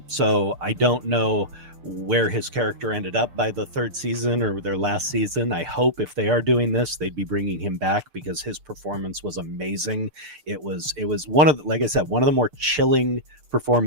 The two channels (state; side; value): late; left; 6.7 ms